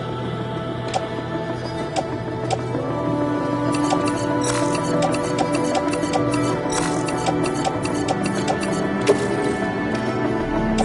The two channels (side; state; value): both; identical; correlation 1.00